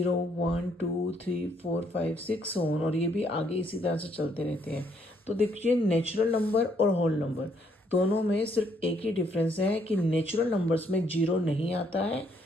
1 2 3 4 5 6 ऑन, और ये भी आगे इसी तरह से चलते रहते हैं। तो देखिए, नेचुरल नंबर और होल नंबर दोनों में सिर्फ एक ही डिफरेंस है कि नेचुरल नंबर्स में जीरो नहीं आता है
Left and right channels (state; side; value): normal; both; correlation 0.70